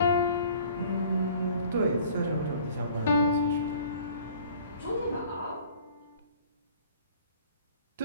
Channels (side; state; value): both; inverted; correlation -0.51